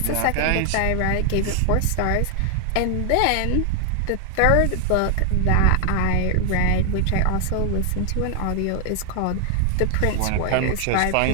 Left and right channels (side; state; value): both; different; correlation 0.00